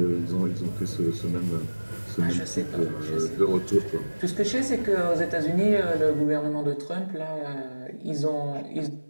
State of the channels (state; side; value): inverted; both; correlation -1.00